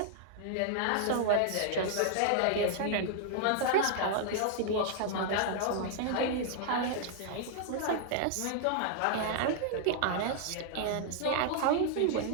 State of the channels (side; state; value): both; different; correlation -0.01